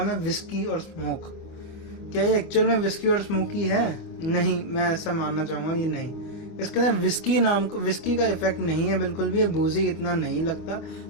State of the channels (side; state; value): right; late; 24 ms